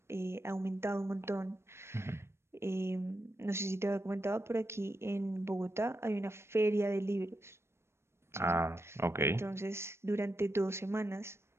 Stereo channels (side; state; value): left; late; 0.12 ms